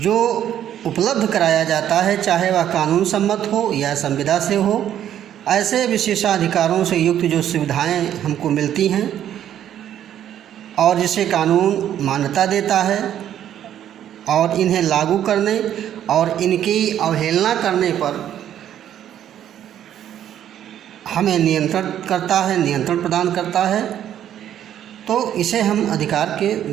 उपलब्ध कराया जाता है, चाहे वह कानून सम्मत हो या संविदा से हो, ऐसे विशेषाधिकारों से युक्त जो सुविधाएं हमको मिलती हैं और जिसे कानून मान्यता देता है, और इन्हें लागू करने और इनकी अवहेलना करने पर हमें नियंत्रण करता है, नियंत्रण प्रदान करता है, तो इसे हम अधिकार के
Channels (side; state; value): left; quieter; 10.7 dB